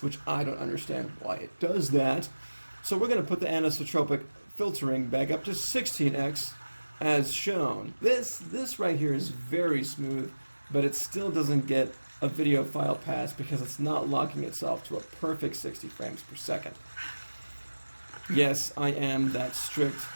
which I don't understand why it does that. So we're going to put the anisotropic filtering back up to 16x as shown. This right here is very smooth, but it still doesn't get a video file pass because it's not locking itself to a perfect 60 frames per second. Yes, I am that strict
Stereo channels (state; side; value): inverted; both; correlation -1.00